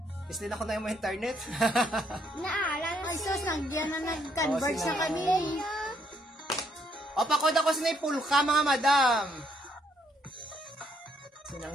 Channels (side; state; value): both; normal; correlation 0.71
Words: Is din ako na yung internet. Naalala Ay, sus, nandiyan na nag-converge Oh, na sila. kami. O, pakod ako sa pulka, mga madam.